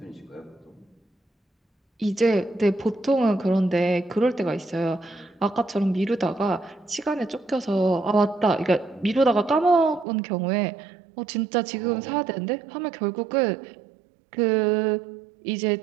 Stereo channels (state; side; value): drops out; left; at 10.1 s